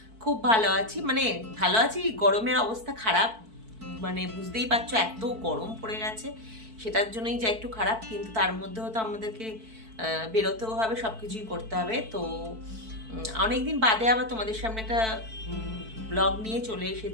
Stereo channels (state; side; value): late; left; 4.5 ms